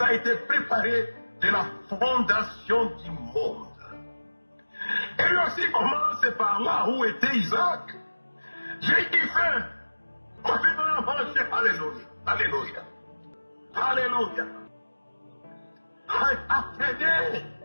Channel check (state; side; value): inverted; both; correlation -1.00